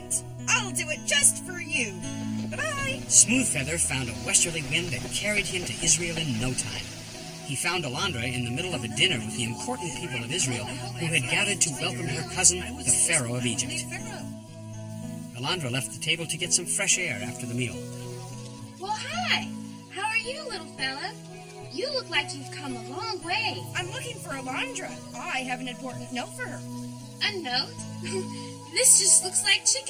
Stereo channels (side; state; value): both; identical; correlation 1.00